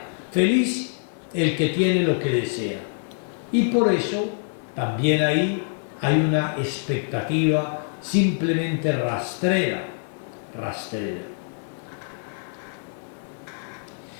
Feliz el que tiene lo que desea. Y por eso también ahí hay una expectativa simplemente rastrera.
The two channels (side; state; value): right; silent; digital silence